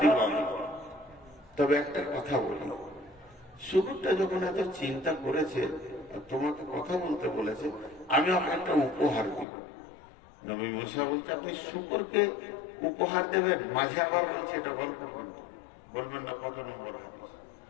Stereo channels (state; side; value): drops out; right; at 9.5 s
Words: আমি। তবে একটা কথা বলি, শুকুরটা যখন এত চিন্তা করেছে, তোমাকে কথা বলতে বলেছে, আমি ওকে একটা উপহার দিব। নবী মুসা বলছে আপনি শুকরকে উপহার দেবেন, মাঝে আবার বলছে এটা গল্প করতে বলবেন না কত নম্বর হাদিস।